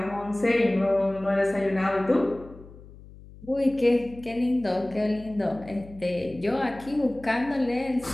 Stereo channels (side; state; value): left; noise; hum, 19 dB below the sound